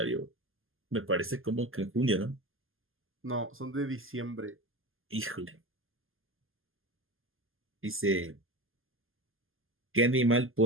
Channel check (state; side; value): late; left; 0.59 ms